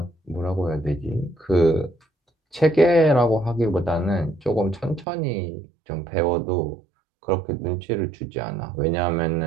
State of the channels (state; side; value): drops out; left; at 5.1 s